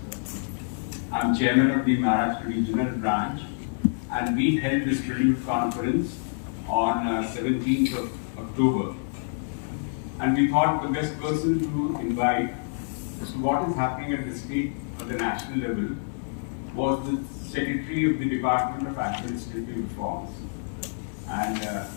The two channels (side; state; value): right; silent; digital silence